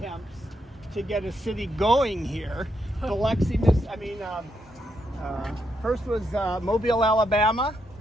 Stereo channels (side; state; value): both; normal; correlation 0.80